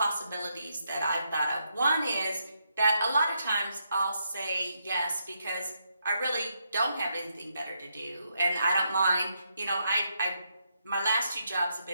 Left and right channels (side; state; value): both; inverted; correlation -0.79